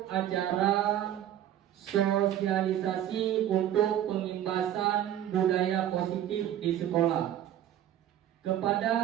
acara sosialisasi untuk pengimbasan budaya positif di sekolah.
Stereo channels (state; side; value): quieter; left; 11.3 dB